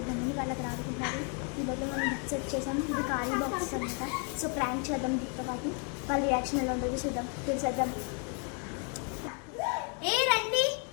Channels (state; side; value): quieter; right; 39.1 dB